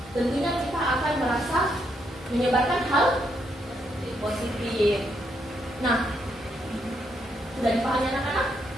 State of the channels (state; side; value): normal; both; correlation 0.77